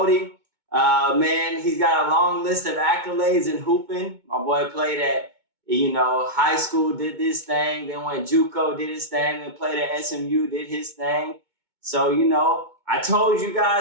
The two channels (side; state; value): left; late; 2.2 ms